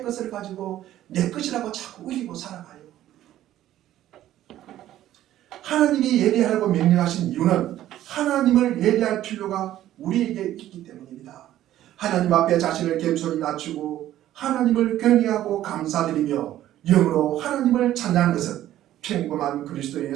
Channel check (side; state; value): left; quieter; 13.1 dB